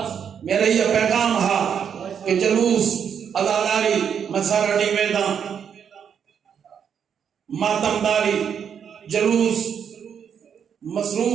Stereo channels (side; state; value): left; quieter; 7.7 dB